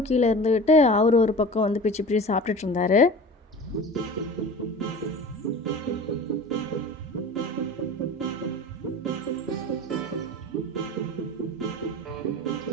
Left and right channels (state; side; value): normal; both; correlation 0.37